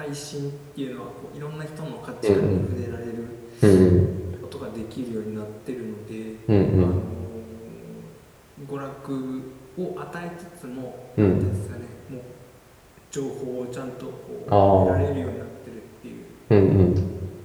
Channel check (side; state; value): both; identical; correlation 1.00